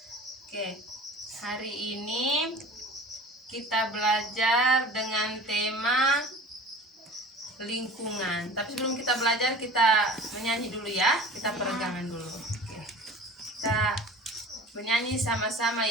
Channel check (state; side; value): normal; both; correlation 0.41